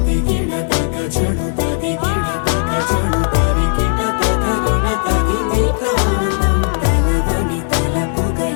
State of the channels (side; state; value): right; silent; 69 dB below the other